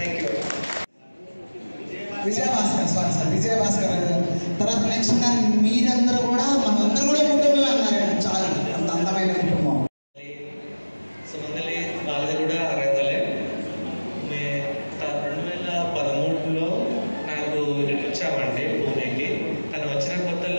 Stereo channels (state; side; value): inverted; both; correlation -1.00